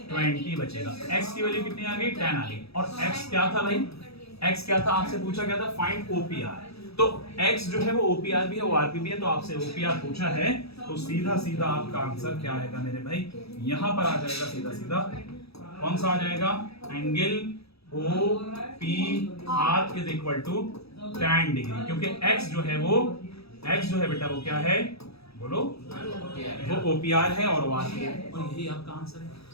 20 बचेगा। x की वैल्यू कितनी आ गई 10 आ गई। और x क्या था भाई, x क्या था आपसे पूछा गया था फाइंड ओपीआर। तो x जो है वो OPR भी है, ORP भी है, तो आपसे OPR पूछा है, तो सीधा सीधा आपका आंसर क्या आएगा मेरे भाई, यहां पर आ जाएगा सीधा सीधा, कौन सा आ जाएगा, angle OPR is equal to tan degree, क्योंकि x जो है बेटा वो क्या है, बोलो, वो OPR है और ORP है, और यही आपका आंसर है।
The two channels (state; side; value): late; right; 0.78 ms